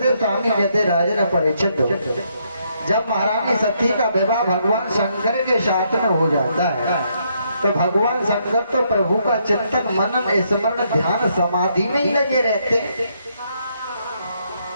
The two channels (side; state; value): both; inverted; correlation -0.74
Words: स्वामी कहते राजन परीक्षित, जब महारानी सती का विवाह भगवान शंकर के साथ में हो जाता है तो भगवान शंकर तो प्रभु का चिंतन, मनन, स्मरण, ध्यान, समाधि में ही लगे रहते हैं,